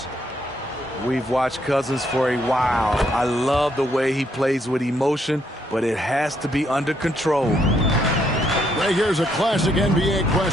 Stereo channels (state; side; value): normal; both; correlation 0.73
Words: We've watched Cousins for a while. I love the way he plays with emotion, but it has to be under control. Right here's a classic NBA